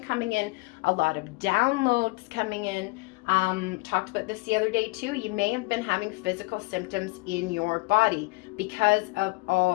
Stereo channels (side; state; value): right; quieter; 26.1 dB